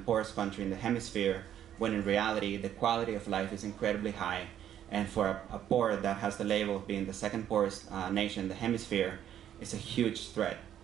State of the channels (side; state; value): left; quieter; 10.5 dB